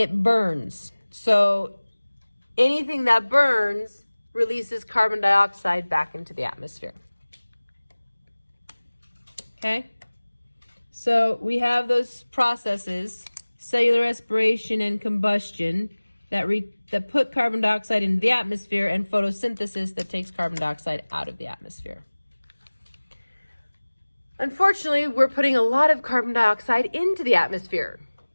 burns. So anything that burns releases carbon dioxide back into the atmosphere. Okay? So we have those processes, cellular respiration and combustion, that put carbon dioxide into the atmosphere, and photosynthesis that takes carbon dioxide out of the atmosphere. Unfortunately, we're putting a lot of carbon dioxide into the atmosphere,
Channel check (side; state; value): both; inverted; correlation -1.00